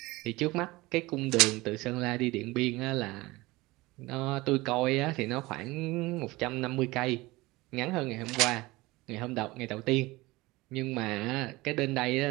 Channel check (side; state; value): left; quieter; 20.9 dB